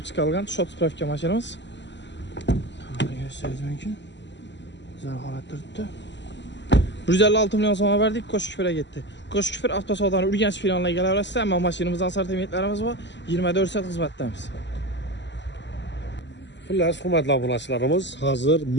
chiqarilgan shot sifrovka mashinamiz. Gösteririz mümkün. Güzel holat turibdi. 156 milyon so'm verdik, Ko'shkufirga ketdi. Ko'shkufir avtosavdoni Urganch filialiga kelaverasiz, ammo mashinamizdan assortimentlarimiz bor. 24 soat xizmatdamiz. Xullas, hurmatli obunachilarimiz, hazır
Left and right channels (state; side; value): late; right; 0.52 ms